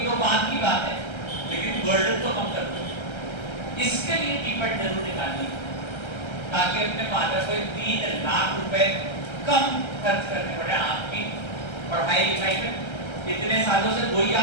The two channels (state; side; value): late; right; 1.3 ms